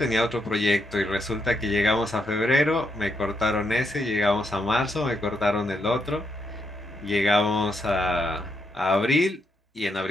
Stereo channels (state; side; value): normal; both; correlation 0.79